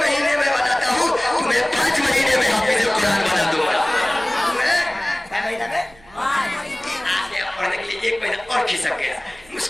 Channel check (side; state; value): right; noise; hum, 27 dB below the sound